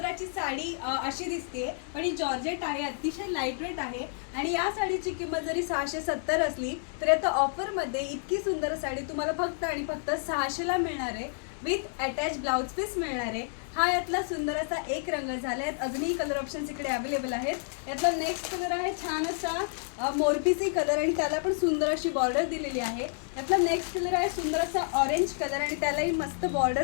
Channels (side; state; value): right; silent; digital silence